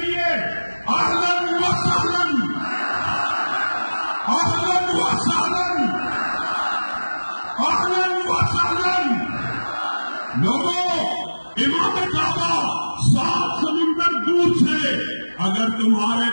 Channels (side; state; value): both; inverted; correlation -1.00